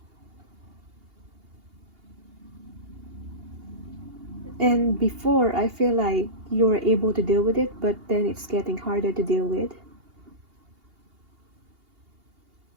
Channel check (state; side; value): late; left; 2.8 ms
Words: And before, I feel like you were able to deal with it, but then it's getting harder to deal with.